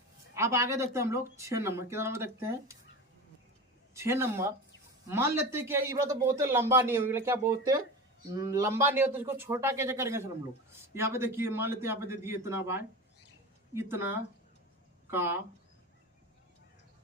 आगे देखते हैं हम लोग 6 नंबर। कितना नंबर देखते हैं 6 नंबर। मान लेते हैं कि ये बात तो बहुत लंबा नहीं होगा, क्या बोलते हैं लंबा नहीं होता, इसको छोटा कैसे करेंगे सर हम लोग। यहाँ पे देखिए मान लेते हैं यहाँ पे दे दिए इतना बाय इतना का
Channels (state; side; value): normal; both; correlation 0.28